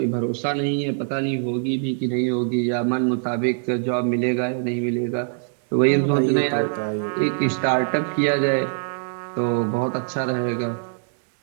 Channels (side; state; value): left; silent; digital silence